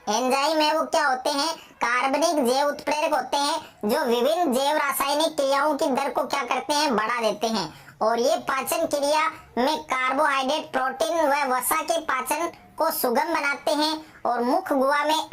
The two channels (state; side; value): identical; both; correlation 1.00